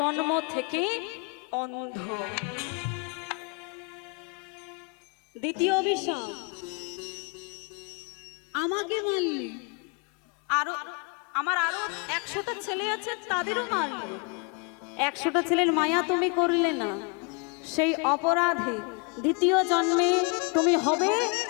থেকে অন্ধ। দ্বিতীয় অভিশাপ, আমাকে মারলে, আমার আরো 100টা ছেলে আছে, তাদেরও মারলে। 100টা ছেলের মায়া তুমি করলে না, সেই অপরাধে দ্বিতীয় জন্মে তুমি হবে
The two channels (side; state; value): right; quieter; 34.0 dB